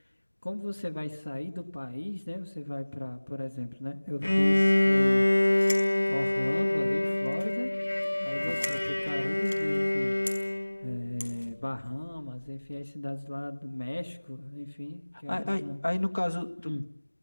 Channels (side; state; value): both; inverted; correlation -1.00